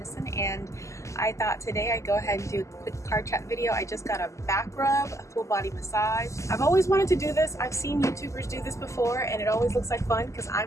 And I thought today I'd go ahead and do a quick car chat video. I just got a back rub, a full body massage. I've always wanted to do this. I've seen YouTubers do this before and it always looks like fun because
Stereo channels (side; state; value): right; late; 0.15 ms